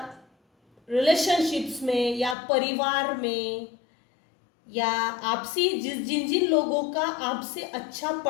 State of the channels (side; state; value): right; drops out; at 2.4 s